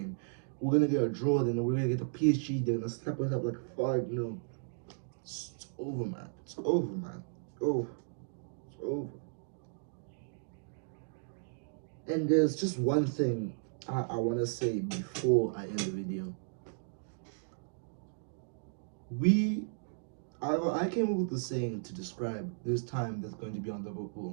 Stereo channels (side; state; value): left; silent; digital silence